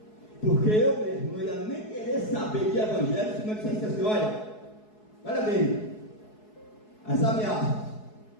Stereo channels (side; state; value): right; late; 4.7 ms